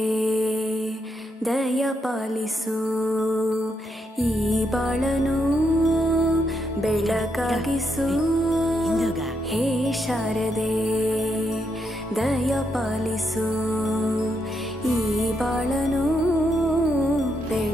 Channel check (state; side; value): normal; both; correlation 0.80